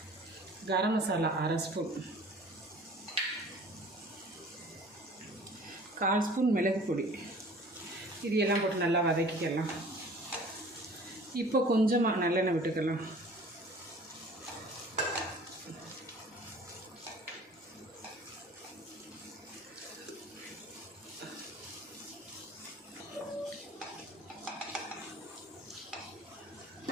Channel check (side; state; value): both; normal; correlation 0.47